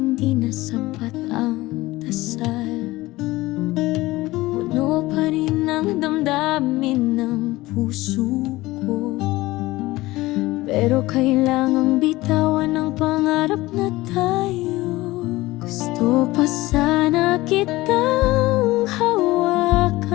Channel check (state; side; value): quieter; right; 19.0 dB